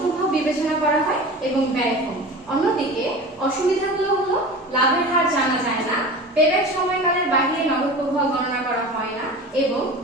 প্রভাব বিবেচনা করা হয় এবং ব্যয় কম। অন্যদিকে অসুবিধাগুলো হলো লাভের হার জানা যায় না, পেব্যাক সময়কালের বাইরে নগদ প্রভাব গণনা করা হয় না এবং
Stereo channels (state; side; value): normal; both; correlation 0.34